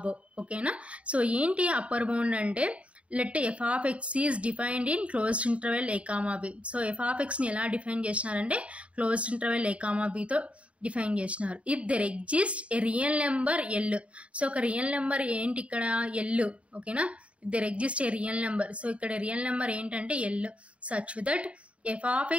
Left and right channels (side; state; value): left; late; 0.063 ms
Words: ఓకేనా? So ఏంటి upper bound అంటే let f of x is defined in closed interval A comma b. So f of ఎక్స్ని ఎలా define చేసినారంటే closed interval ఏ comma బితో define చేసినారు. If there exist a real number l. So ఒక real number ఏంటి ఇక్కడ l, ఓకేనా. If there exist a real number, so ఇక్కడ రియల్ నెంబర్ ఏంటంటే l, such that F of